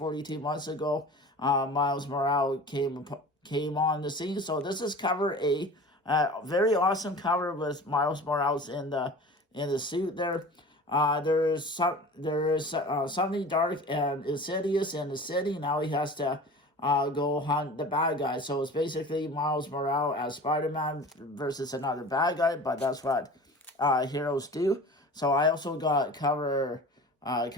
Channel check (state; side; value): normal; both; correlation 0.39